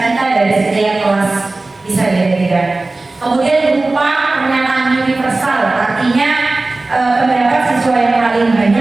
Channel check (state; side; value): quieter; left; 3.2 dB